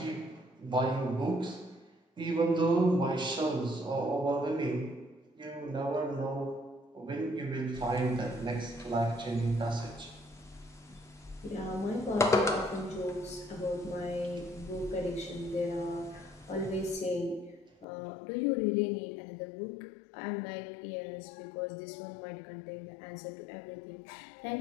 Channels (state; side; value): drops out; right; at 17.9 s